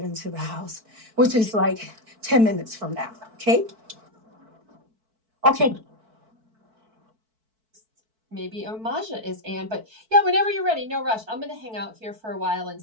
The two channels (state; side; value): late; left; 4.5 ms